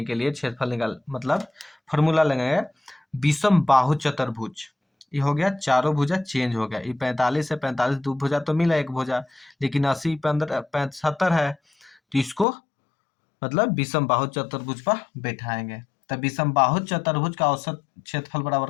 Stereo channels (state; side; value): drops out; right; at 12.5 s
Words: के लिए क्षेत्रफल निकाल मतलब फॉर्मूला लगाएंगे विषम बाहु चतुर्भुज। ये हो गया, चारों भुजा चेंज हो गया। ये 45 है, 45 दो भुजा तो मिला एक भुजा, लेकिन 80 15 75 है, तो इसको मतलब विषम बाहु चतुर्भुज पर बैठाएंगे। तो विषम बाहु चतुर्भुज का औसत क्षेत्रफल